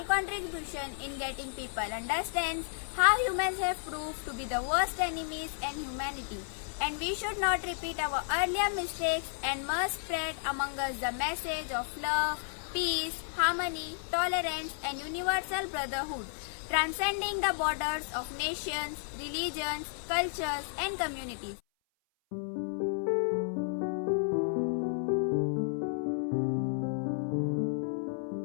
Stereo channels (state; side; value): silent; right; 56 dB below the other